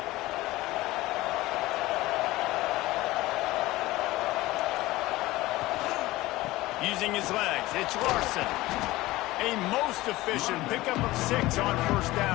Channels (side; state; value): right; quieter; 18.5 dB